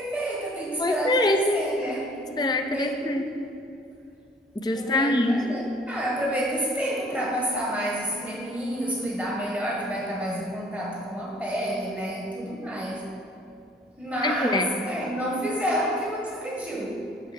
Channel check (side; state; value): both; normal; correlation 0.55